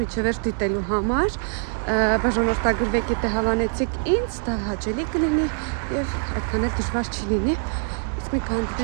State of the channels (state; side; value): silent; left; digital silence